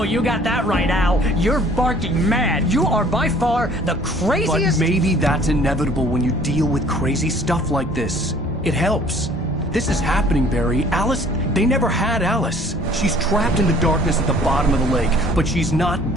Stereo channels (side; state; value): both; normal; correlation 0.54